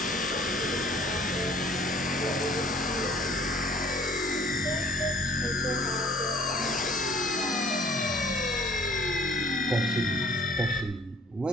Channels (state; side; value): normal; both; correlation 0.55